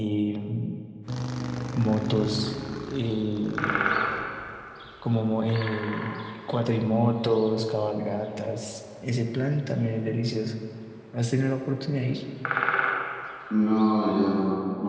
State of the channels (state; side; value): identical; both; correlation 1.00